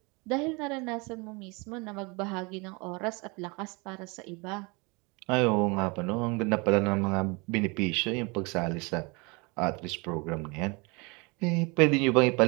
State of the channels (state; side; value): quieter; left; 28.7 dB